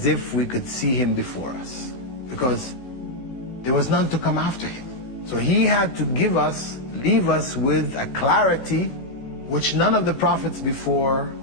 if we could see him before us, because there was none to come after him. So he had to leave us with a clarity which none of the prophets before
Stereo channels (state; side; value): late; right; 16 ms